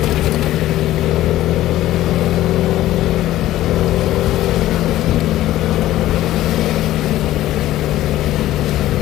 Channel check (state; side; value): quieter; right; 14.7 dB